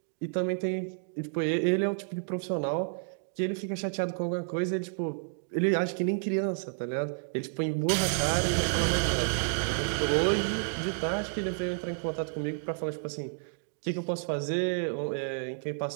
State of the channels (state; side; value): silent; left; digital silence